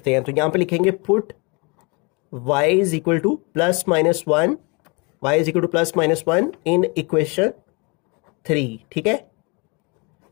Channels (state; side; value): quieter; right; 30.0 dB